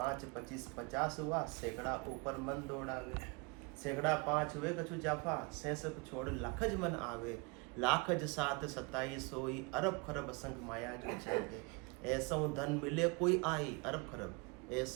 50 हुआ, सैकड़ा ऊपर मन दौड़ावे। सैकड़ा 5 हुए कछु जाफा, सैसक छोड़ लाखज मन आवे, लाखज 7 27 होई, अरब खरब असंग माया जो चाहे। ऐसा धन मिले कोई आई, अरब खरब,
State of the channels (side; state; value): left; quieter; 29.8 dB